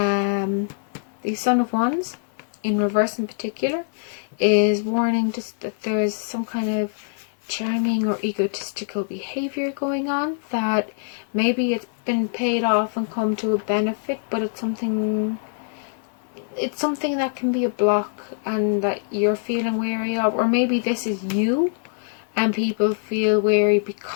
The Son of Wands in reverse in particular is warning just that there's some kind of charming or egotistical behavior going on, that maybe it's been paid off and come to a benefit, but it's something that can be a block and that you're feeling wary of. Or maybe this is you and people feel wary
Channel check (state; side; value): silent; right; digital silence